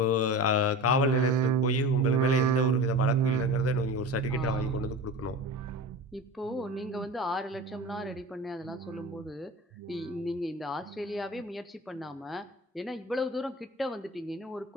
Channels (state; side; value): normal; both; correlation 0.32